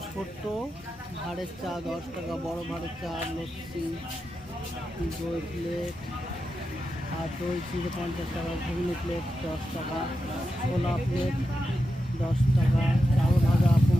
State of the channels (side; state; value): both; normal; correlation 0.89